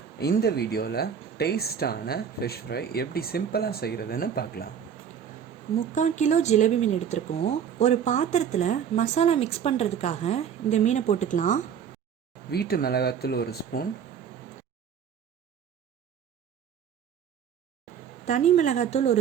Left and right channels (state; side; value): quieter; left; 8.0 dB